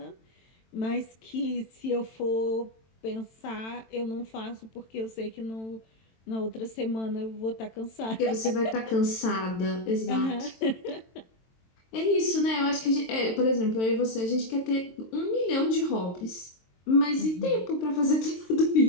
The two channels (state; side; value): late; right; 22 ms